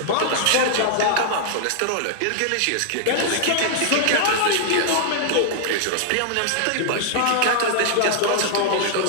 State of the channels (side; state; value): both; different; correlation -0.01